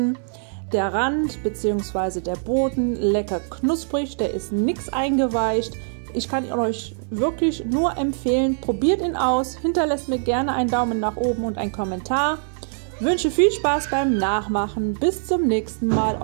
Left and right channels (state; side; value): silent; left; 62 dB below the other